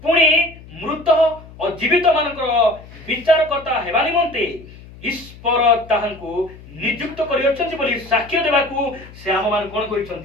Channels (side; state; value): left; noise; hum, 19 dB below the sound